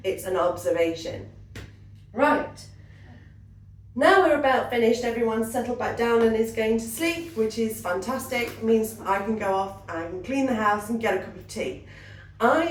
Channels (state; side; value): identical; both; correlation 1.00